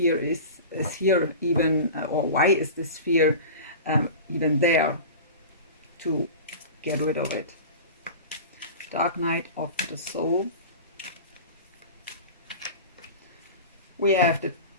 is here even, or why is this fear even there, to get rid of it. Dark night of the soul. We have the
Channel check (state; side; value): inverted; both; correlation -0.33